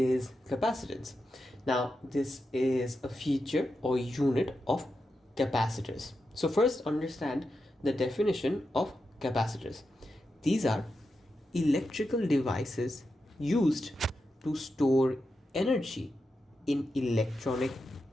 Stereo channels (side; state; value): both; normal; correlation 0.88